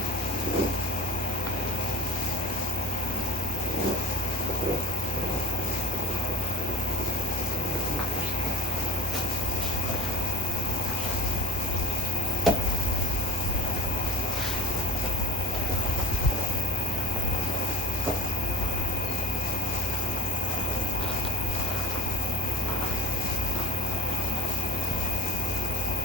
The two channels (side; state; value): both; normal; correlation 0.41